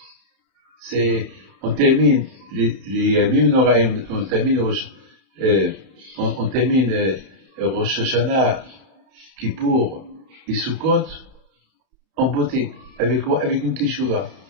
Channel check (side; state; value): left; late; 31 ms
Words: On termine les Yamim Noraim, on termine Rosh Hashanah, Kippour et Sukkot en beauté. Avec quoi? Avec une Teshuvah.